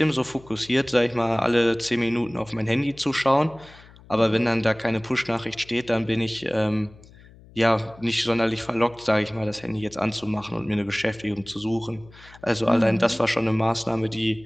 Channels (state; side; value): noise; left; hum, 23 dB below the sound